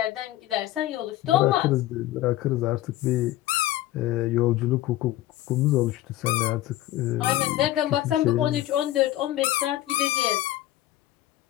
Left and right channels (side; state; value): right; quieter; 14.9 dB